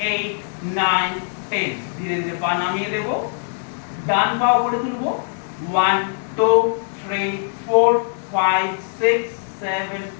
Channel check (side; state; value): right; silent; digital silence